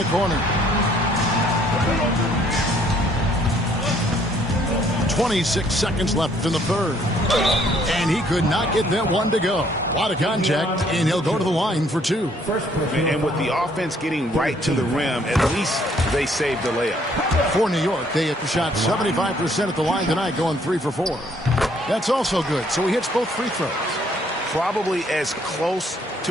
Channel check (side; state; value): both; normal; correlation 0.64